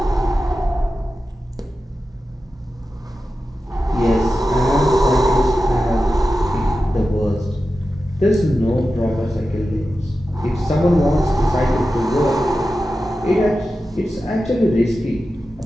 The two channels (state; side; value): normal; both; correlation 0.92